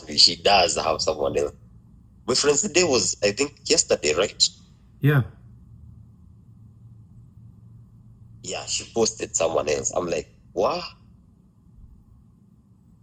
me, she does have someone else. My friend's day was, I think, yesterday, right? Yeah. Yeah, she posted someone else. I'm like, what?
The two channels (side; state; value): both; identical; correlation 1.00